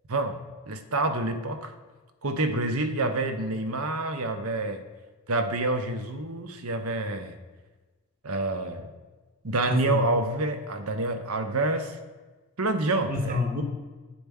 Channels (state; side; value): normal; both; correlation 0.05